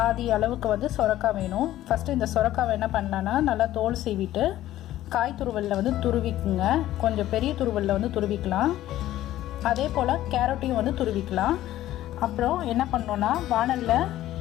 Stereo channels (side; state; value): right; quieter; 14.0 dB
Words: அளவுக்கு வந்து சொரக்காய் வேணும். ஃபஸ்ட்டு இந்த சொரக்காவை என்ன பண்ணலான்னா நல்லா தோல் சீவிட்டு காய் துருவலில் வந்து துருவிக்குங்க. கொஞ்சம் பெரிய துருவலில் வந்து துருவிக்கலாம். அதே போல் கேரட்டையும் வந்து துருவிக்கலாம். அப்புறம் என்ன பண்ணோன்னா வானலில்